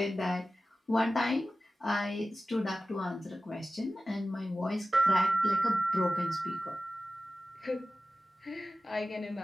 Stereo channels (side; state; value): both; normal; correlation 0.95